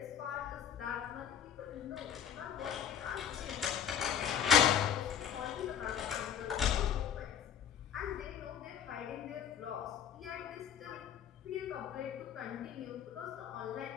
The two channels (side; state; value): right; quieter; 8.8 dB